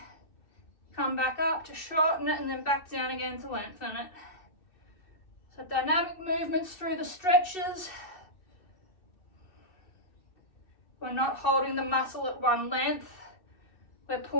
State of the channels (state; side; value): late; right; 2.6 ms